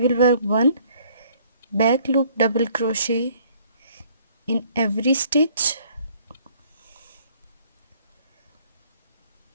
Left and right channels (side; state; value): both; inverted; correlation -0.60